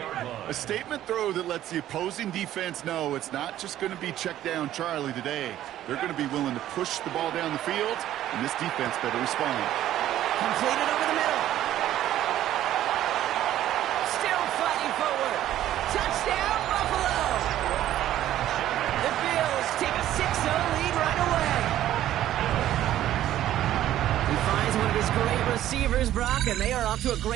A statement throw that lets the opposing defense know it's not just going to be check down Charlie today. They're going to be willing to push the ball down the field, and this defense better respond. Completed over the middle. Still fighting forward. Touchdown, Buffalo. The Bills take a 6-0 lead right away. He finds one of his great receivers, Brock, and they are off to a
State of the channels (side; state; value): left; quieter; 12.7 dB